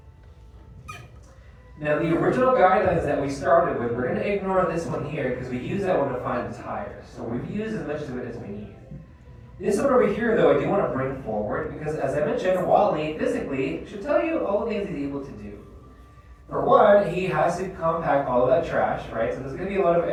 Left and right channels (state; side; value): identical; both; correlation 1.00